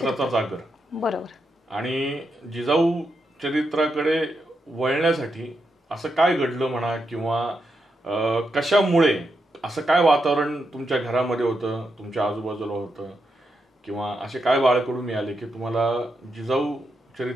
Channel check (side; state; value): both; normal; correlation 0.84